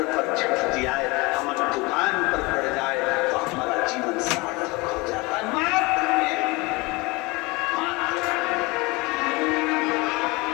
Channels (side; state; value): right; quieter; 24.7 dB